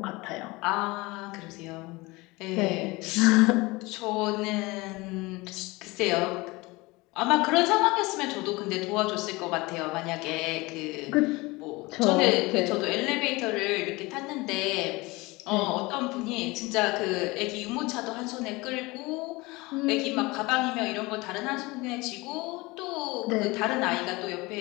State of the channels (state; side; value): quieter; right; 22.9 dB